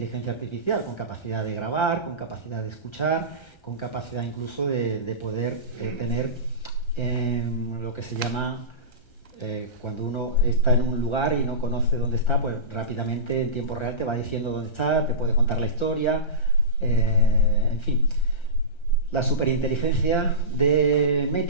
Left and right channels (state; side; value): late; right; 1.3 ms